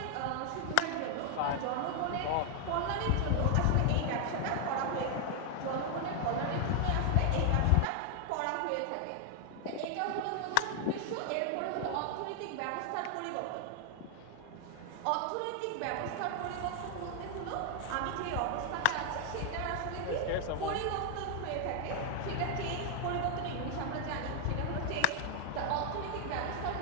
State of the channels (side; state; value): both; different; correlation 0.00